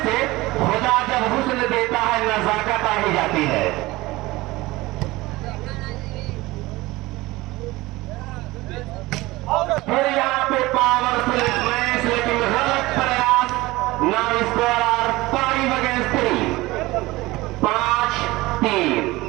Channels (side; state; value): left; quieter; 20.0 dB